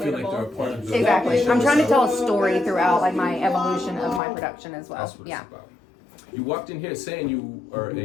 feel like relatable. they're a part of the... Exactly. I'm trying to tell a story throughout like my evolution of my production as well. That's what Yeah. it's about. You walked in here saying you are a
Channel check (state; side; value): drops out; right; at 4.2 s